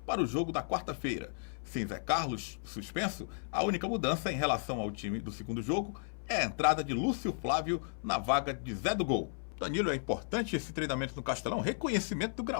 para o jogo da quarta-feira. Sem Zé Carlos suspenso, a única mudança em relação ao time do segundo jogo é a entrada de Lúcio Flávio na vaga de Zé do Gol. Danilo, é importante esse treinamento no Castelão, reconhecimento do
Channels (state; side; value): silent; right; 55 dB below the other